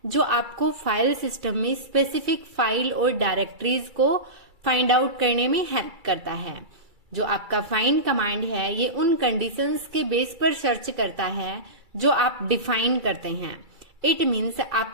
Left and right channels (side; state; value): left; late; 2.3 ms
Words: जो आपको फाइल सिस्टम में स्पेसिफिक फाइल और डायरेक्टरीज को फाइंड आउट करने में हेल्प करता है। जो आपका फाइंड कमांड है ये उन कंडीशंस के बेस पर सर्च करता है जो आप डिफाइन करते हैं। इट मीन्स